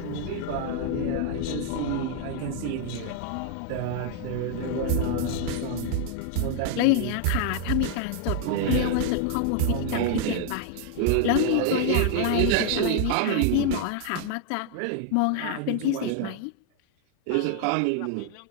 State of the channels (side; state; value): both; different; correlation 0.00